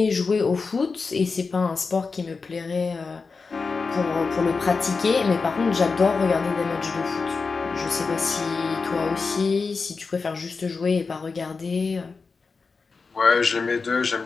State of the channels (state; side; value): quieter; right; 4.6 dB